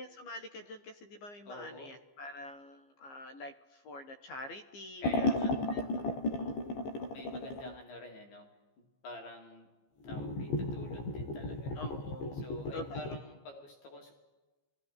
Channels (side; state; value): right; late; 15 ms